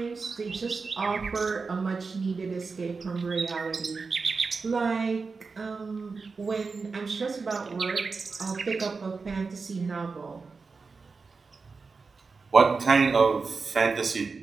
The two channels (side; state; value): left; quieter; 4.5 dB